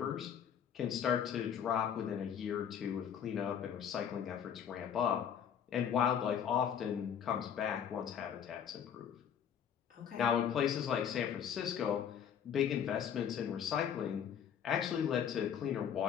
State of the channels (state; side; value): quieter; right; 8.5 dB